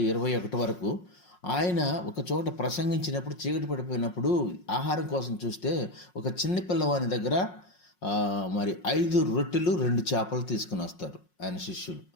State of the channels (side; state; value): right; late; 5.5 ms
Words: 21 వరకు ఆయన ఒక చోట ప్రసంగించినప్పుడు చీకటి పడిపోయినప్పుడు ఆహారం కోసం చూస్తే ఒక చిన్న పిల్లవాని దగ్గర మరి 5 రొట్టెలు 2 చేపలు తీసుకుని వస్తారు ఆయన శిష్యులు.